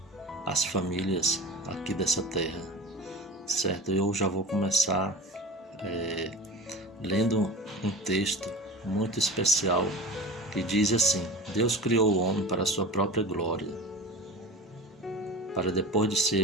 as famílias aqui dessa terra, certo? Eu já vou começar lendo um texto muito especial que diz assim: Deus criou o homem para a sua própria glória, para depois de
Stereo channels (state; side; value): normal; both; correlation 0.33